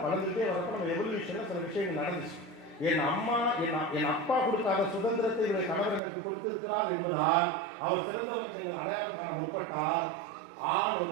வளர்ந்துட்டே வரப்ப நம்ம எவல்யூஷன்ல சில விஷயங்கள் நடந்துச்சு. என் அப்பா கொடுக்காத சுதந்திரத்தை இவருடைய கணவர் எனக்கு கொடுத்திருக்கிறார் என்பதால் அவர் சிறந்தவர் நீங்கள் அடையாளம் காண முற்பட்டால் ஆள்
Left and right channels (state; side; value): drops out; left; at 6.0 s